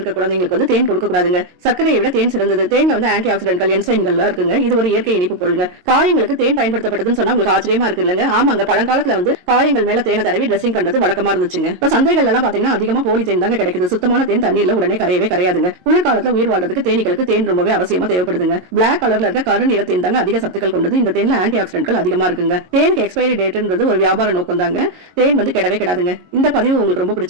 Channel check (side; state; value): left; late; 22 ms